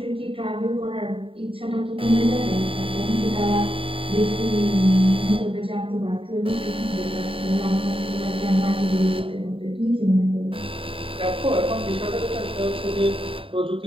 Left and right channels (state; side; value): late; left; 0.26 ms